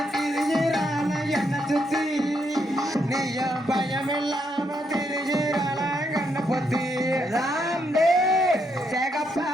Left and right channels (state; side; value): normal; both; correlation 0.77